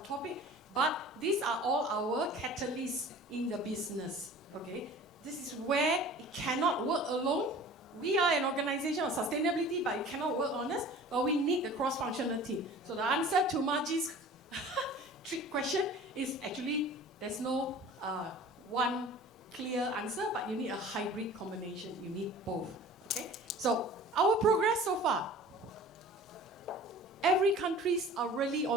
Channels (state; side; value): normal; both; correlation 0.43